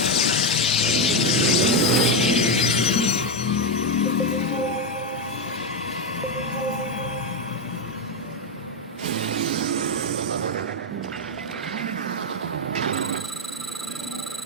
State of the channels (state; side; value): normal; both; correlation 0.07